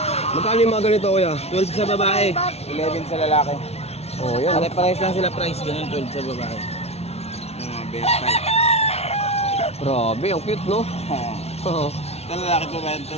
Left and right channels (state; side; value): late; right; 0.31 ms